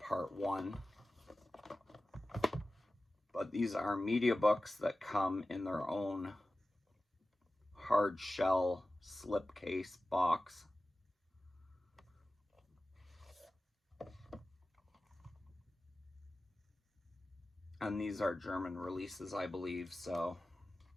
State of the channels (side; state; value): both; normal; correlation 0.96